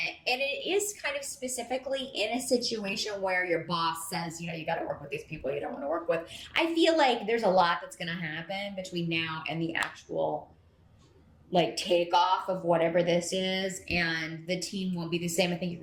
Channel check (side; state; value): both; identical; correlation 1.00